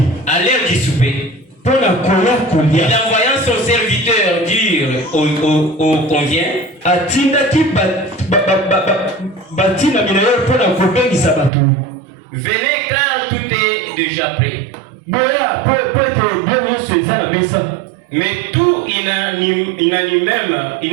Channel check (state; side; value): drops out; left; at 11.5 s